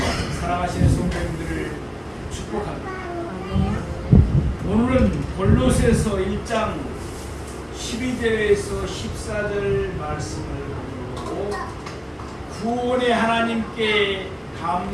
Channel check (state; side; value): identical; both; correlation 1.00